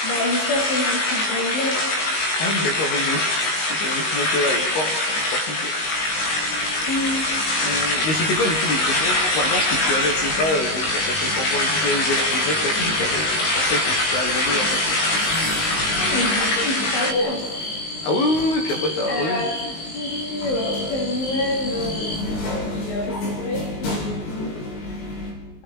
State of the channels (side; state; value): right; late; 19 ms